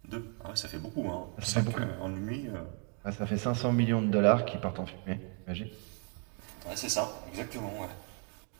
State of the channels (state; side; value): quieter; left; 39.3 dB